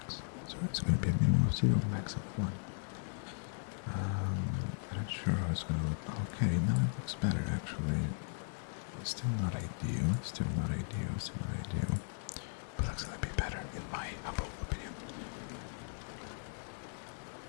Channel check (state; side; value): silent; right; digital silence